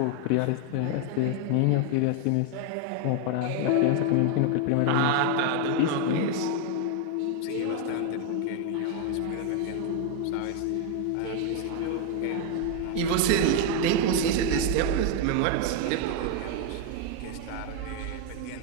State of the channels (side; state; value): both; different; correlation 0.01